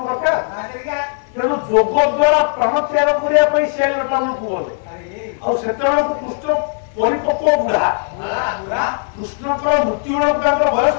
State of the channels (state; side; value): silent; right; digital silence